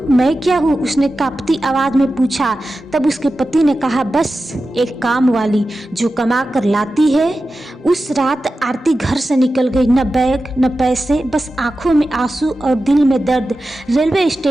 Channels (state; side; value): normal; both; correlation 0.93